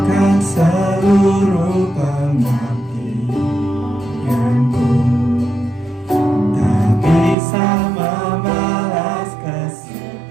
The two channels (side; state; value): left; drops out; at 7.4 s